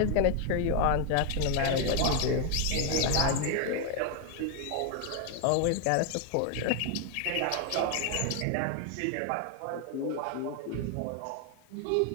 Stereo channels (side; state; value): both; different; correlation 0.01